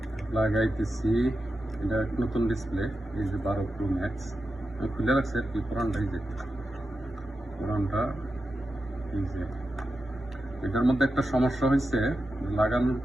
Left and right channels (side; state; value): both; normal; correlation 0.90